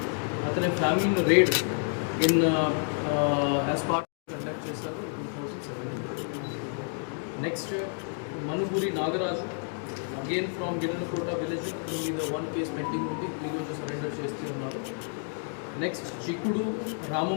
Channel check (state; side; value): silent; right; 55 dB below the other